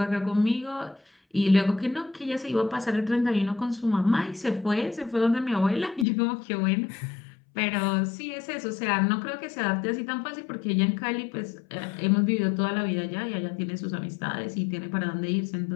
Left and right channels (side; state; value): right; drops out; at 6.1 s